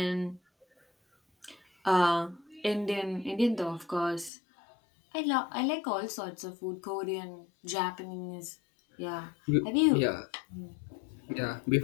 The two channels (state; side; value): drops out; right; at 4.3 s